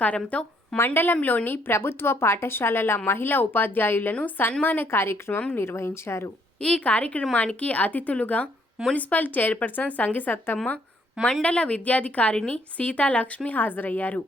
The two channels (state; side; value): normal; both; correlation 0.68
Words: మండలంలోని ప్రభుత్వ పాఠశాలల మహిళా ఉపాధ్యాయులను సన్మాన కార్యక్రమం నిర్వహించారు. ఈ కార్యక్రమానికి అతిథులుగా మున్సిపల్ చైర్పర్సన్ సంగిసత్తమ్మ, మండల విద్యాధికారిణి సీతాలక్ష్మి హాజరయ్యారు.